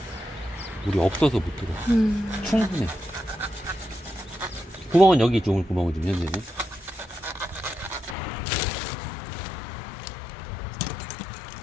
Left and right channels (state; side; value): drops out; right; at 8.2 s